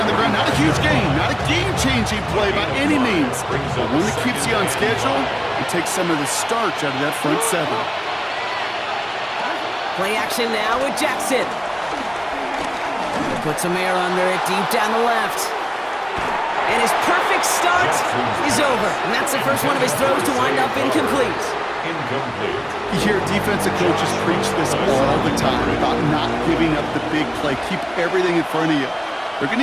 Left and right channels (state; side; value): identical; both; correlation 1.00